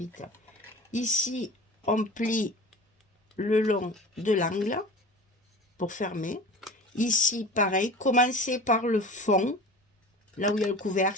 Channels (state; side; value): normal; both; correlation 0.36